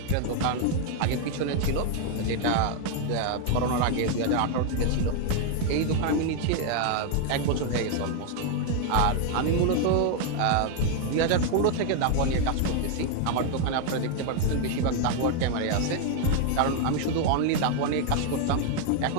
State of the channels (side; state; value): both; different; correlation 0.00